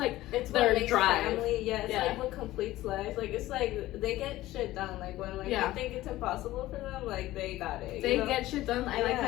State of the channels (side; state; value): right; quieter; 16.3 dB